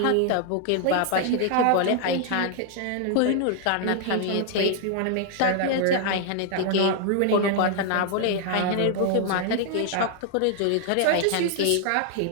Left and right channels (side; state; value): both; different; correlation 0.00